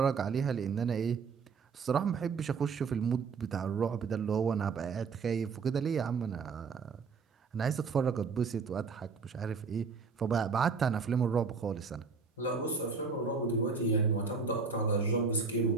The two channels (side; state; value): left; quieter; 5.2 dB